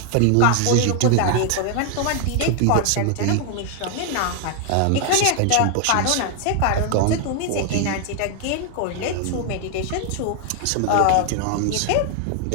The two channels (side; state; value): both; different; correlation 0.00